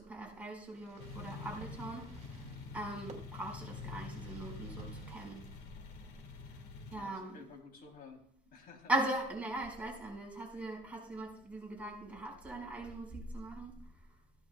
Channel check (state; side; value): normal; both; correlation 0.54